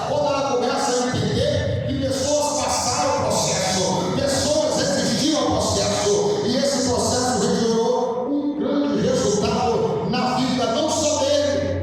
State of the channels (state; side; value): identical; both; correlation 1.00